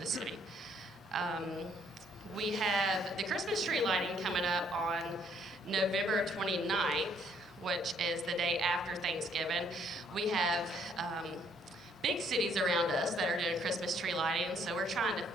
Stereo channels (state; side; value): normal; both; correlation 0.67